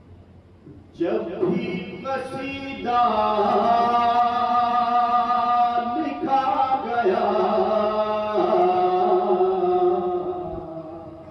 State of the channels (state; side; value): identical; both; correlation 1.00